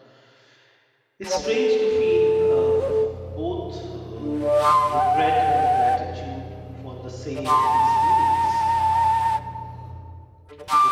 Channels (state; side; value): identical; both; correlation 1.00